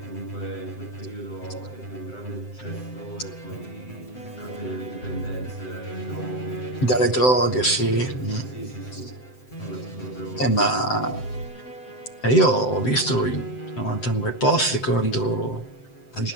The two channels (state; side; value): late; right; 7.8 ms